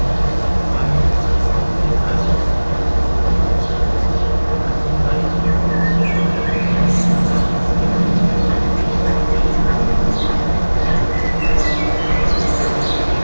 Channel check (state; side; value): inverted; both; correlation -1.00